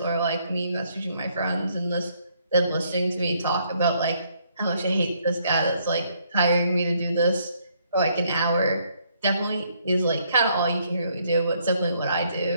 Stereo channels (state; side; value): inverted; both; correlation -0.70